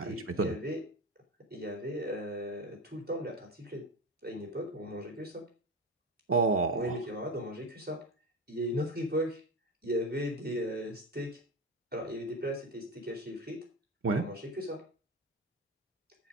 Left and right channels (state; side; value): normal; both; correlation 0.21